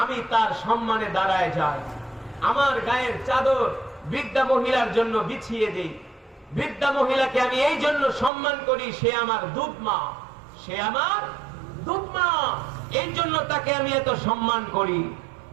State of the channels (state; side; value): drops out; left; at 8.3 s